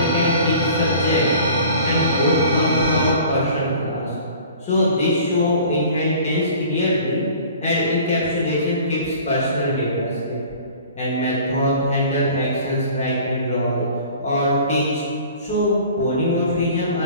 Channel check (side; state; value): both; inverted; correlation -0.46